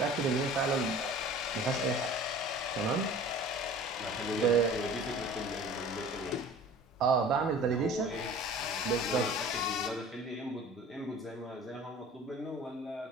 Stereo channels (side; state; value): both; normal; correlation 0.43